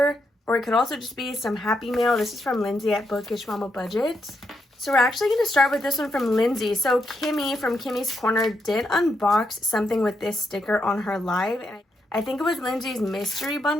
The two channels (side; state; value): both; normal; correlation 0.81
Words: or it could also just be some Happy Mail. This is from Lindsay at BudgetWithAmanda. So we're actually going to start with this one from Lindsay. So Kimmy from Kimmy's Corner did unbox something with this sticker on her live, and I think it was Lindsay's mystery